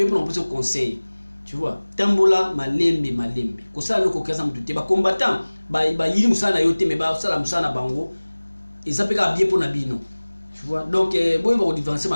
pour la conseil. Tu vois, tambola malembe. Ko ça le kokaza mututé ba combattant, ba yiri musana yote mais ba sala musana bango. Et ça peut être bien pour Nabino. Tu vois, donc bon il va différencier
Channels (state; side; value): inverted; both; correlation -1.00